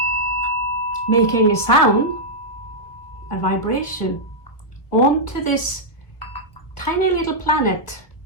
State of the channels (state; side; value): late; right; 1.1 ms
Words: making a sound, a vibration, onto this tiny little planet,